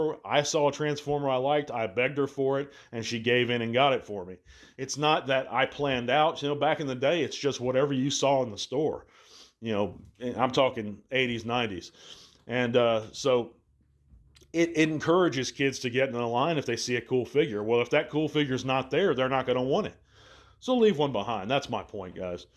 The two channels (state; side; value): identical; both; correlation 1.00